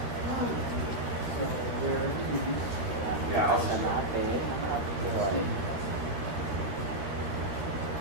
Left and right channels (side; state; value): left; late; 13 ms